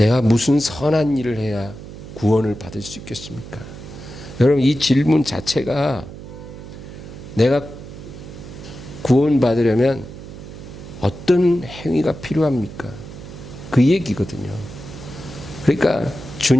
무슨 선한 일을 해야 구원을 받을 수 있겠습니까? 여러분, 이 질문 자체가 내가 구원받으려면 어떤 행위가 필요합니까? 그 얘기거든요. 그러니까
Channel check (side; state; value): right; noise; hum, 13 dB below the sound